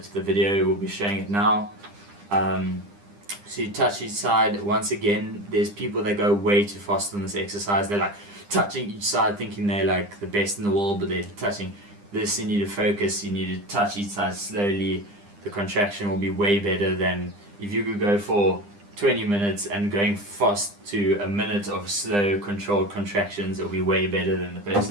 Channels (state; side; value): late; left; 9.9 ms